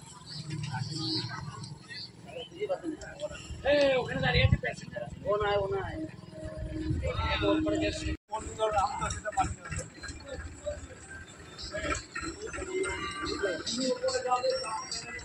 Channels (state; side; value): identical; both; correlation 1.00